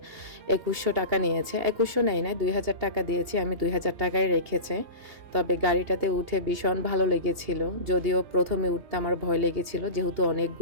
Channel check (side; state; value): left; late; 2.8 ms